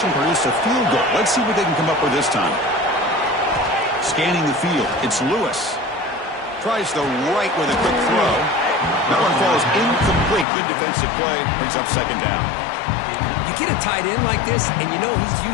produced a field goal. Let's see what they can come up with this time. Scanning the field, it's Lewis. Tries the right with a quick throw. That one falls incomplete. Good defensive play. Brings up second down. You get a tight end like this, and you know he's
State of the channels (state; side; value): drops out; right; at 10.5 s